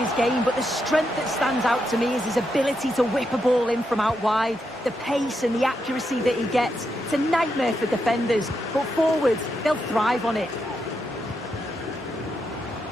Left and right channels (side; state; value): both; normal; correlation 0.83